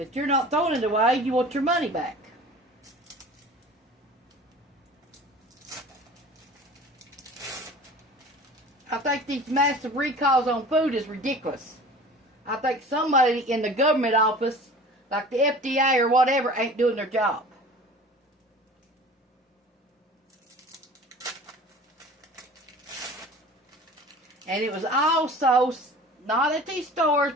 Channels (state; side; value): normal; both; correlation 0.41